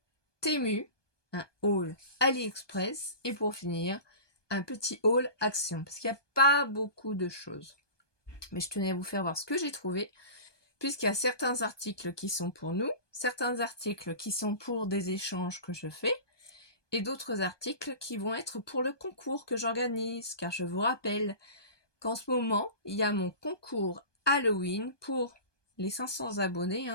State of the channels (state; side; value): late; right; 1.2 ms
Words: Temu, un haul AliExpress et pour finir un petit haul Action parce qu'il n'y a pas beaucoup de choses. Mais je tenais à vous faire voir ce que j'ai trouvé puisqu'il y a certains articles qui sont pour nous, certains articles qui sont pour des échanges que je fais et d'autres articles qui vont être pour le concours que j'organise car je vous rappelle qu'en ce moment, il y a mon concours Halloween pour les 500 abonnés,